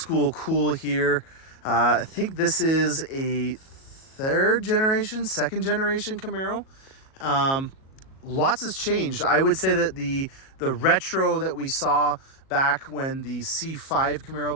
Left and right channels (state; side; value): late; right; 37 ms